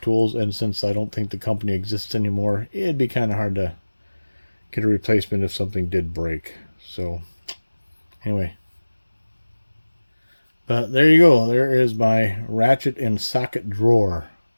Tools, and since I don't think the company exists anymore, it'd be kind of hard to get a replacement if something did break. So anyway, but there you go. There is my ratchet and socket drawer.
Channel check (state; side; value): inverted; both; correlation -1.00